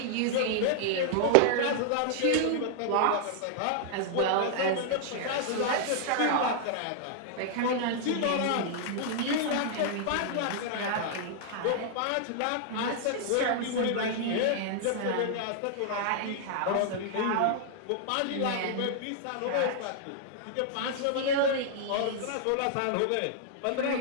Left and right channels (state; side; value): different; both; correlation -0.01